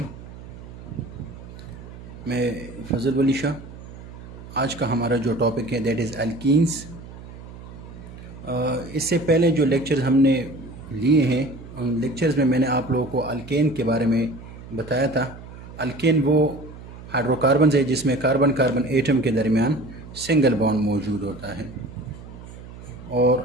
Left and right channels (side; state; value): right; noise; hum, 15 dB below the sound